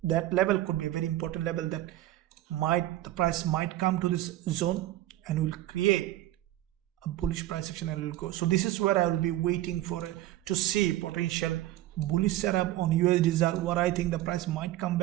level could be a very important level that the price might come to this zone and will create a bullish price action and will go. So this is where I will be waiting for to see potential bullish setup on USD ZAR. What I think the price might come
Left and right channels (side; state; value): left; quieter; 14.9 dB